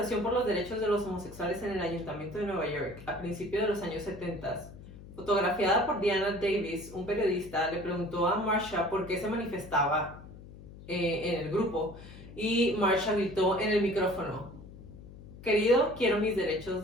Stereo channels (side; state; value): left; noise; hum, 16 dB below the sound